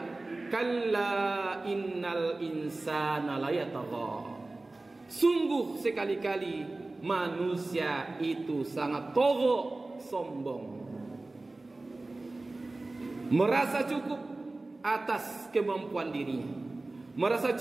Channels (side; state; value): left; quieter; 3.1 dB